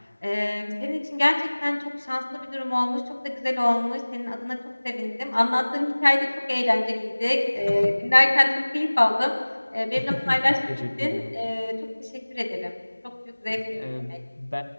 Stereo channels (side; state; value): both; inverted; correlation -1.00